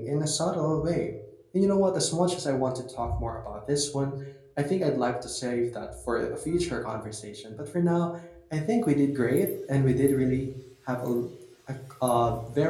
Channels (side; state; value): both; identical; correlation 1.00